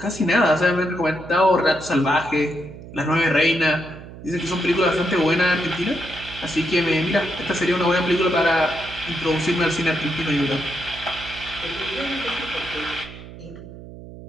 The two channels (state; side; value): noise; right; hum, 15 dB below the sound